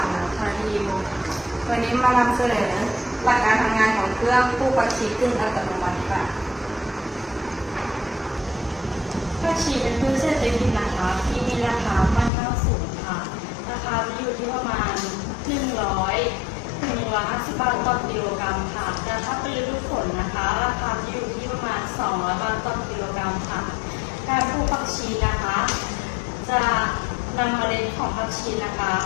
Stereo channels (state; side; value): drops out; right; at 12.3 s